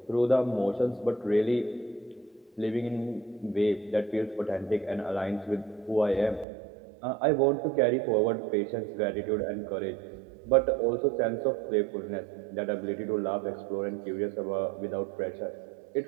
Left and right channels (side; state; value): left; drops out; at 6.5 s